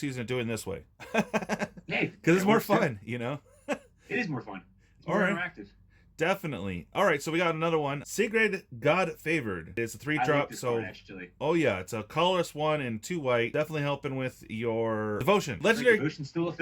doing this way. Yeah, Because it's more fun, you know. It is more fun. It's more All right. interactive. Definitely. All right, so we got another one. Sigrid, God Favored. It's a 3-drop, I like this so one, actually. oh yeah, it's a colorless 1 and 2 white. Definitely helping with your devotion. Legendary. Devotion's still a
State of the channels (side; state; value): both; identical; correlation 1.00